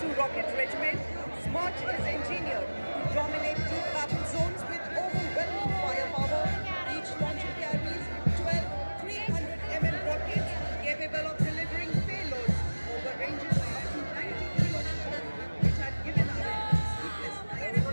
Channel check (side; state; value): both; inverted; correlation -1.00